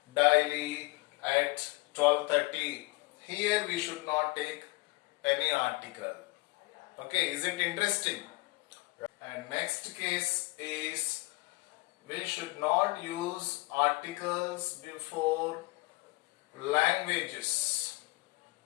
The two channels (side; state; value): right; quieter; 24.2 dB